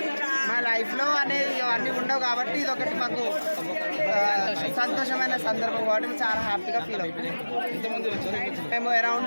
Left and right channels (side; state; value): both; inverted; correlation -1.00